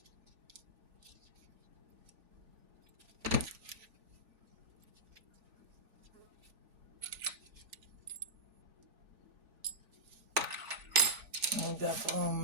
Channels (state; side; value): late; left; 3.4 ms